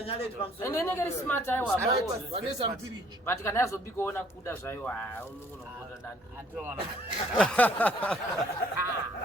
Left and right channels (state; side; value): normal; both; correlation 0.61